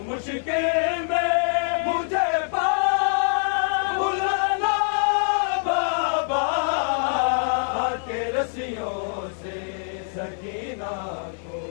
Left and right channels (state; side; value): silent; right; digital silence